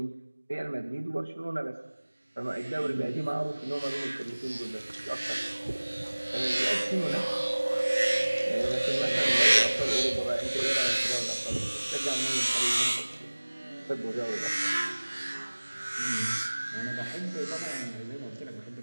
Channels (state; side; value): inverted; both; correlation -1.00